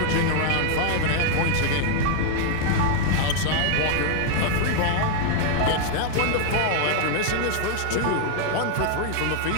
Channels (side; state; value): both; different; correlation 0.00